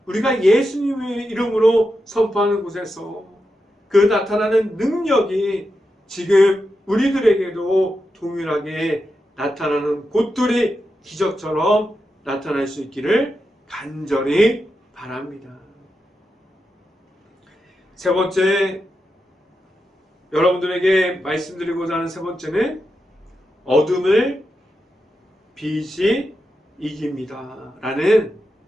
우리가 예수님의 이름으로 선포하는 곳에서 그 나타나는 능력이 지금 우리들에게도 동일하게 나타나는 곳들이 기적처럼 나타날 수 있기를 간절히 바랍니다. 세 번째, 여러분들에게 말씀드리고자 하는 세 번째는 어둠을 빛이 이깁니다. 라는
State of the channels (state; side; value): normal; both; correlation 0.88